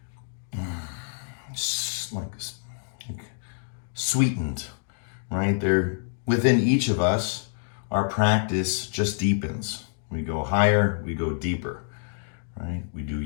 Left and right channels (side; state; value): right; silent; digital silence